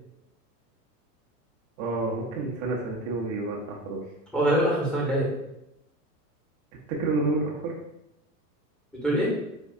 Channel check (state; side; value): normal; both; correlation 0.33